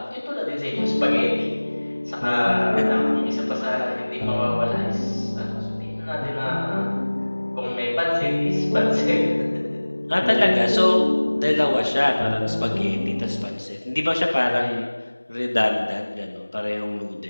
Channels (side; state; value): both; inverted; correlation -1.00